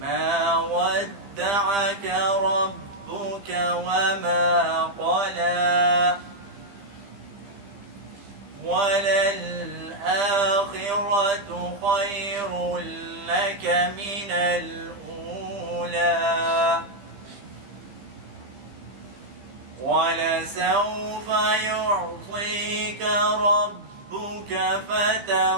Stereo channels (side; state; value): left; late; 15 ms